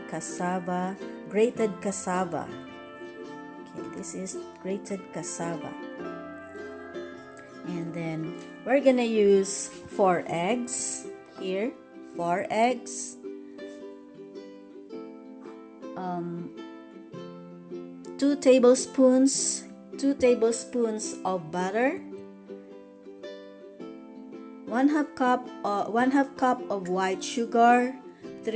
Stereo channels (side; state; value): both; identical; correlation 1.00